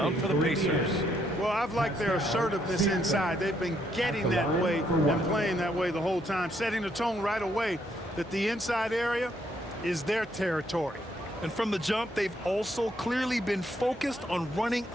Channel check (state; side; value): normal; both; correlation 0.72